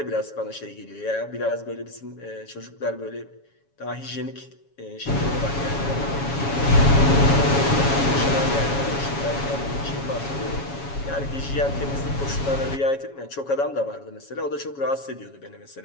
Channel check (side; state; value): right; late; 7.2 ms